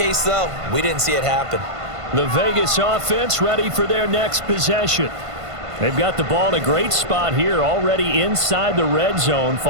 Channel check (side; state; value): left; late; 1.5 ms